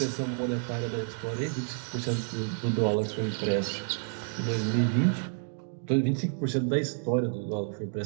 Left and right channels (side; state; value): left; silent; 58 dB below the other